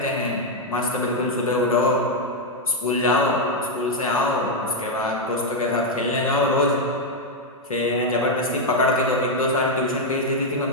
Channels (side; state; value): both; normal; correlation 0.01